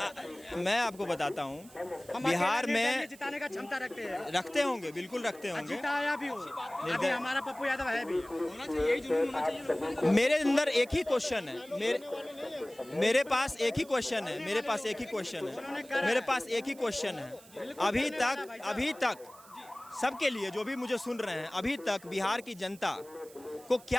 मैं आपको बताता हूँ, हम बिहार अकेले में निर्दलीय जिताने का क्षमता रखते हैं, रखते होंगे, बिल्कुल रखते होंगे। जिताया भी हो। अभी हमारा पप्पू यादव है भी। होना चाहिए, यही जुनून होना चाहिए। मेरे अंदर एक ही क्वेश्चन है, मेरे पास एक ही क्वेश्चन है, मेरे पास एक ही क्वेश्चन है, मेरे पास एक ही क्वेश्चन है। अभी तक सबके लिए, जो भी मुझे सुन रहे हैं, अभी तक बिहार की जनता को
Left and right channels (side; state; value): right; noise; hiss, 22 dB below the sound